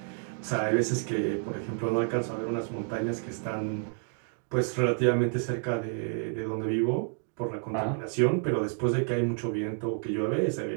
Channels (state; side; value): silent; left; 58 dB below the other